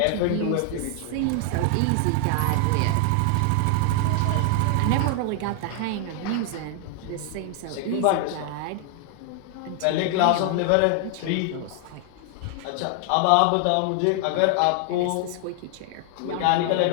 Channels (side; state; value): both; different; correlation 0.00